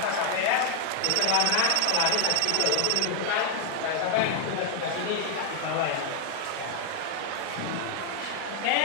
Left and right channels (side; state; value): both; different; correlation 0.00